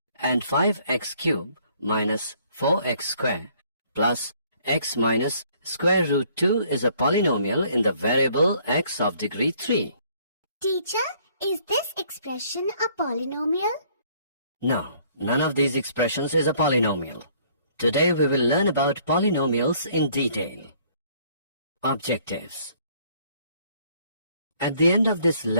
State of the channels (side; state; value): both; inverted; correlation -0.61